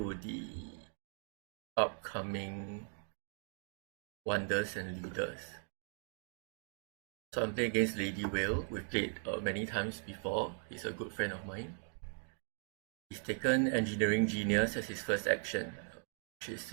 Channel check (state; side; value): silent; left; 52 dB below the other